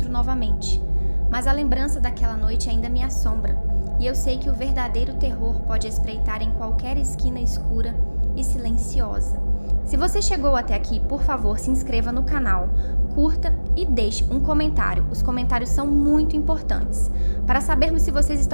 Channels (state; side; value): inverted; both; correlation -1.00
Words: novamente, mas a lembrança daquela noite ainda me assombra, e eu sei que o verdadeiro terror pode espreitar em qualquer esquina escura e silenciosa. Se você chegou até aqui, por favor, se inscreva no canal, curta e deixe um comentário. Os comentários são muito importantes. Para sabermos se vocês